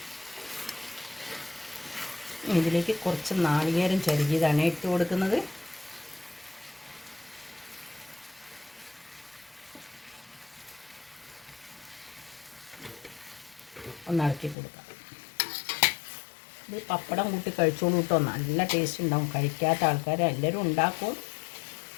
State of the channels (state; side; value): drops out; right; at 14.6 s